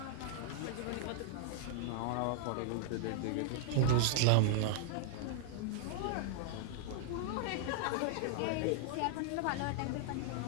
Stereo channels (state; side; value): different; both; correlation -0.01